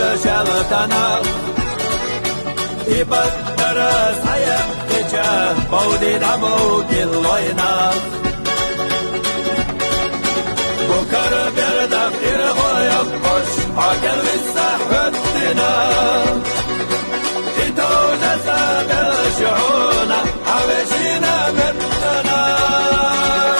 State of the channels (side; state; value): both; inverted; correlation -1.00